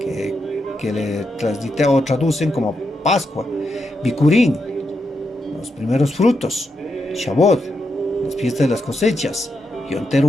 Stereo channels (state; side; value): normal; both; correlation 0.83